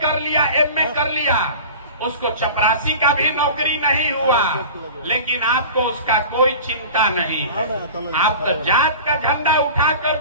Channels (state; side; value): inverted; both; correlation -0.37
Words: कर लिया, एमए कर लिया, उसको चपरासी का भी नौकरी नहीं हुआ, लेकिन आपको उसका कोई चिंता नहीं है। आप तो जात का झंडा उठाकर